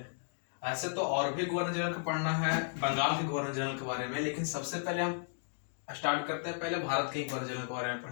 ऐसे तो और भी गवर्नर जनरल का पढ़ना है, बंगाल के गवर्नर जनरल के बारे में, लेकिन सबसे पहले हम स्टार्ट करते हैं। पहले भारत के गवर्नर जनरल के बारे में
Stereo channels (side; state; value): right; silent; digital silence